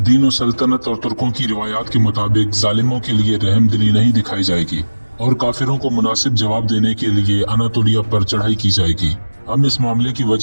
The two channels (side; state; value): both; inverted; correlation -1.00